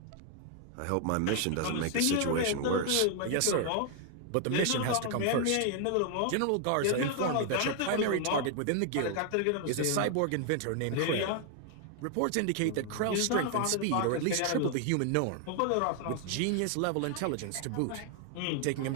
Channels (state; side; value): different; both; correlation 0.00